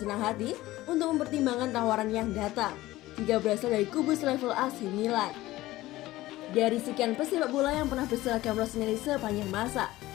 senang hati untuk mempertimbangkan tawaran yang datang jika berasal dari kubu selevel AC Milan. Dari sekian pesepak bola yang pernah berseragam Rossoneri sepanjang masa,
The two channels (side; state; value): right; quieter; 17.1 dB